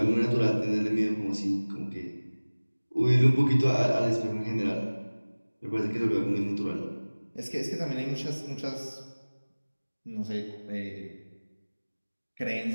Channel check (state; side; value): inverted; both; correlation -1.00